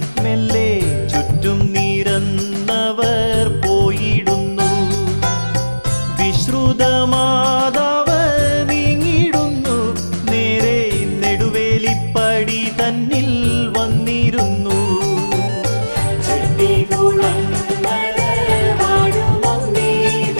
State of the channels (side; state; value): both; inverted; correlation -1.00